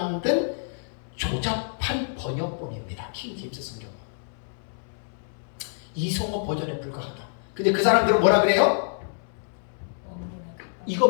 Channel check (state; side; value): silent; right; 60 dB below the other